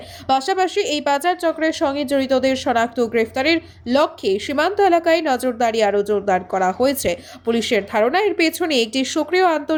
পাশাপাশি এই পাচার চক্রের সঙ্গে জড়িতদের শনাক্ত ও গ্রেফতারের লক্ষ্যে সীমান্ত এলাকায় নজরদারি আরও জোরদার করা হয়েছে। পুলিশের ধারণা, এর পেছনে একটি সক্রিয়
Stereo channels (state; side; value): identical; both; correlation 1.00